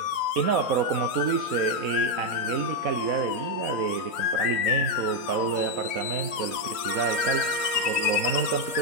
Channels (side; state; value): left; late; 3.1 ms